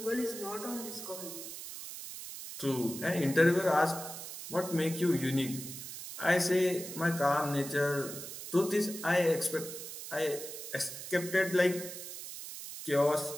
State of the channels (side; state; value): right; noise; hiss, 10 dB below the sound